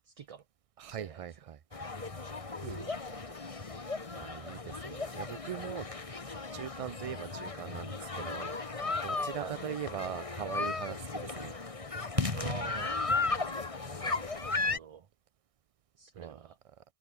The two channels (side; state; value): left; late; 1.6 ms